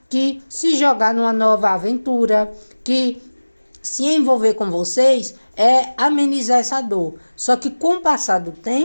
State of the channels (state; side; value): inverted; both; correlation -1.00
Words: que se jogar numa nova aventura, que se envolver com vocês é amenizar essa dor. Só que com o passar do